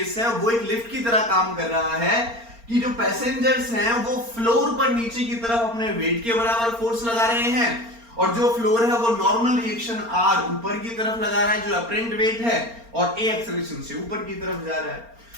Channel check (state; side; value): late; left; 4.3 ms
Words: है वो एक लिफ्ट की तरह काम कर रहा है कि जो पैसेंजर्स हैं वो फ्लोर पर नीचे की तरफ अपने वेट के बराबर फोर्स लगा रहे हैं, और जो फ्लोर है वो नॉर्मल रिएक्शन आर ऊपर की तरफ लगा रहा है, जो अपरेंट वेट है, और ए एक्सेलरेशन से ऊपर की तरफ जा रहा है।